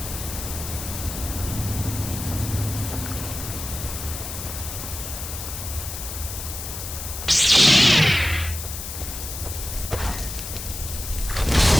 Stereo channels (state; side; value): noise; left; hiss, 8 dB below the sound